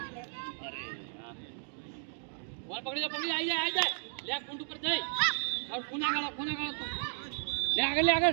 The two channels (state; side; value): silent; left; digital silence